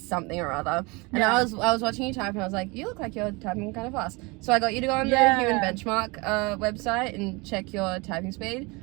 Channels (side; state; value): left; quieter; 26.6 dB